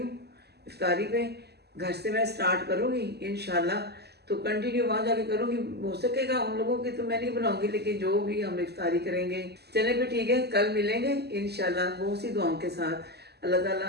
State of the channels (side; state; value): left; late; 0.47 ms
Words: इफ्तारी पे, घर से मैं स्टार्ट करूँगी इंशाल्लाह, तो कंटिन्यू वहाँ जाके करूँगी। हो सकेगा उन लोगों की तो मैं नहीं बनाऊँगी, लेकिन जो भी हम इफ्तारी करेंगे। चले फिर ठीक है, कल मिलेंगे इंशाल्लाह बहुत सी दुआओं के साथ। अल्लाह ताला